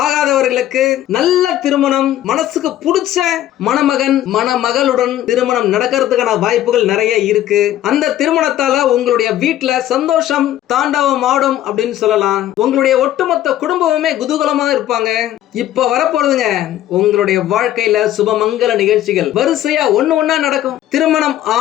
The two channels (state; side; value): quieter; right; 12.8 dB